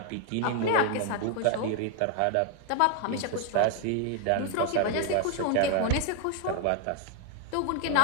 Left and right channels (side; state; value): both; different; correlation 0.00